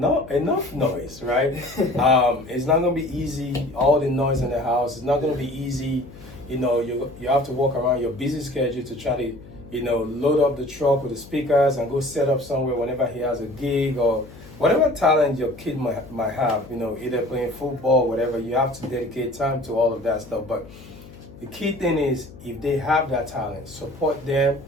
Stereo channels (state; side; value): noise; left; hum, 19 dB below the sound